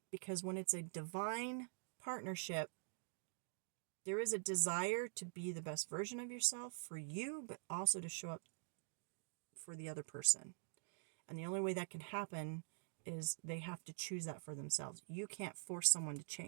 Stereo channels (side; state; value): left; silent; digital silence